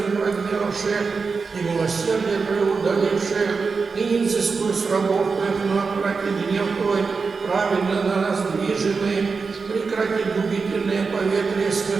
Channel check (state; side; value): quieter; left; 4.8 dB